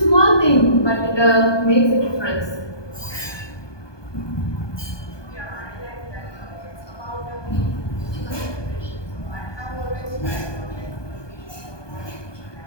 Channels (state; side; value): late; right; 1.2 ms